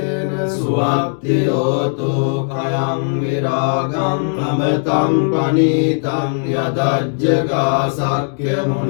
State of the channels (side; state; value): right; silent; digital silence